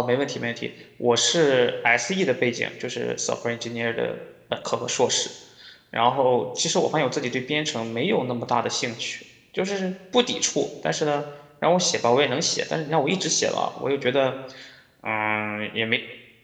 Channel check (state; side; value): identical; both; correlation 1.00